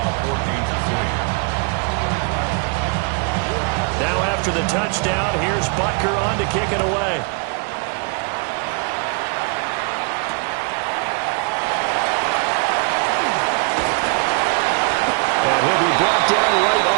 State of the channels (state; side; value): quieter; left; 36.0 dB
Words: 14-6. Now after the touchdown, here's Butker on to kick it away. And he'll be brought down right